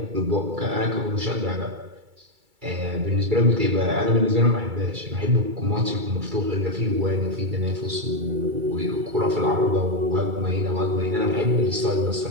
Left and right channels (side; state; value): left; late; 2.3 ms